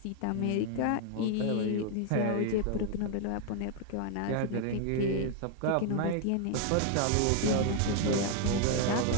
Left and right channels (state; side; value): different; both; correlation 0.00